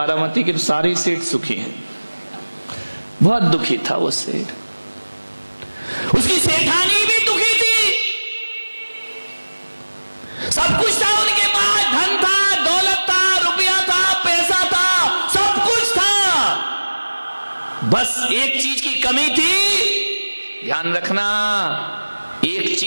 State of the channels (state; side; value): inverted; both; correlation -1.00